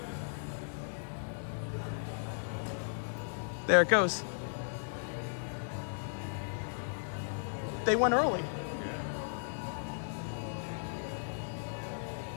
There it goes. They went early.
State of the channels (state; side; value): silent; right; 54 dB below the other